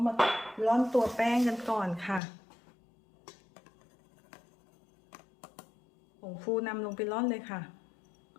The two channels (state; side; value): drops out; right; at 2.2 s